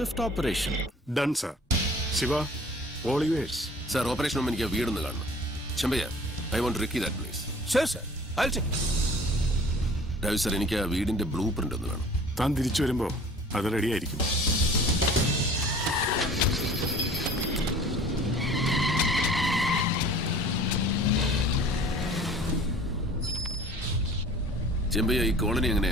operation. Done sir. Siva, all yours. Sir, operation മുമ്പ് എനിക്ക് ആ വീടൊന്ന് കാണണം. Chempayya, I want recce that place. Sure, sir. I'll check. Raju sir, എനിക്ക് ആ വീടിന്റെ ബ്ലൂ പ്രിന്റ് ഒന്ന് വേണം. താൻ തിരിച്ചു വരുമ്പോൾ അത് റെഡിയായിരിക്കും. ചെമ്പയ്യ, ഈ കോളനി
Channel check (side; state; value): both; normal; correlation 0.47